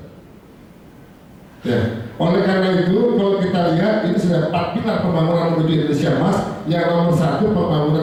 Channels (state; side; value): identical; both; correlation 1.00